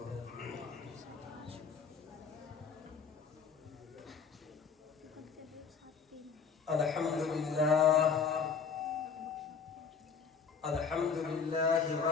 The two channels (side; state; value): right; quieter; 5.9 dB